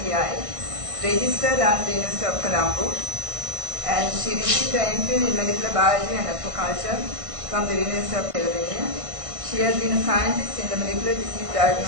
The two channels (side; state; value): left; late; 1.5 ms